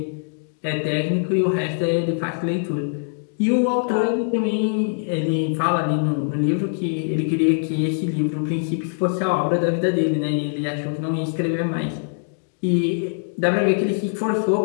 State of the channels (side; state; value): right; silent; digital silence